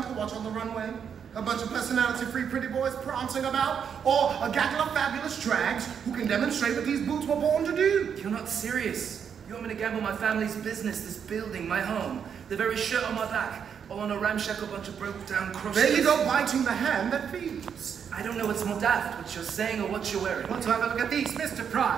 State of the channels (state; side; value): quieter; left; 7.5 dB